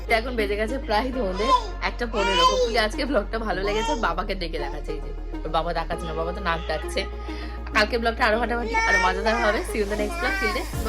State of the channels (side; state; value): both; identical; correlation 1.00